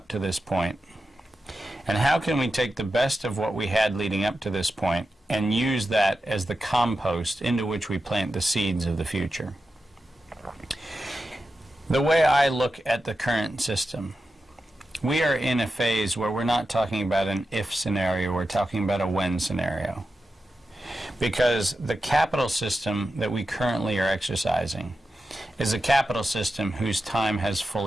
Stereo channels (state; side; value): normal; both; correlation 0.90